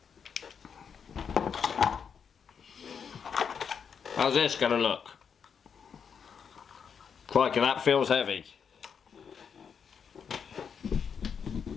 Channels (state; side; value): quieter; right; 6.8 dB